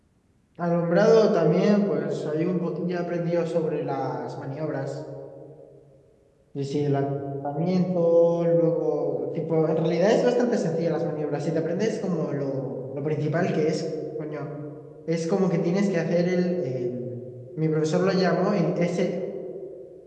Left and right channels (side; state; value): both; identical; correlation 1.00